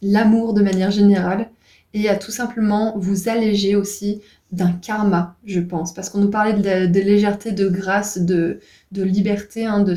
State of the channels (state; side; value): identical; both; correlation 1.00